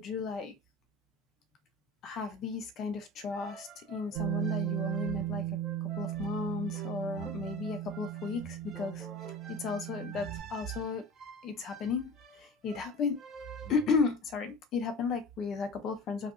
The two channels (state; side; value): normal; both; correlation 0.37